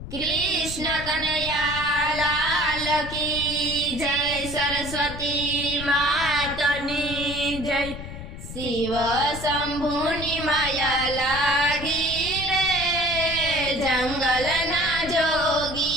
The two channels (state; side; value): noise; left; rumble, 10 dB below the sound